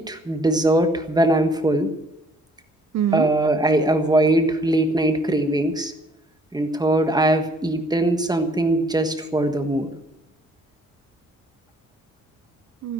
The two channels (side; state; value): both; normal; correlation 0.61